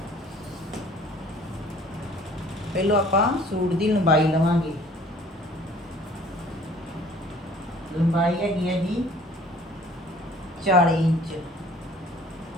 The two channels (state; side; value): normal; both; correlation 0.52